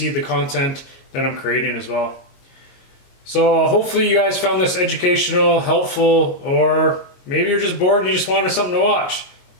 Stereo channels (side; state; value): right; late; 22 ms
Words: the content that I'm creating as well. So hopefully you guys found this educational, helpful, or maybe you're just bored and you just wanted something to watch.